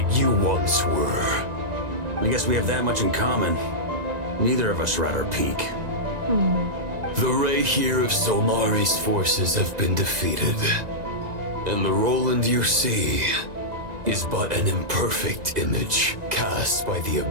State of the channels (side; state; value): left; late; 1.9 ms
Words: you once were. I guess we have that much in common. Neither of us are at our peak. The Raihir of Solnari's forces have been defeated. And the Roland you see is but an imperfect image cast by the